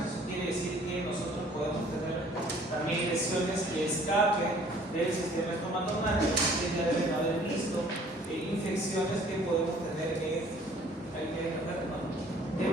Eso quiere decir que nosotros podemos tener también lesiones que escapen del sistema estomatognático. Ustedes ya deben haber visto infecciones que podemos tener de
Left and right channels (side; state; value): both; normal; correlation 0.56